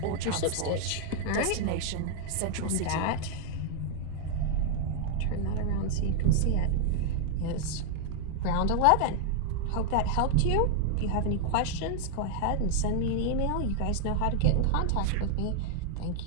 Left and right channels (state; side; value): different; both; correlation 0.00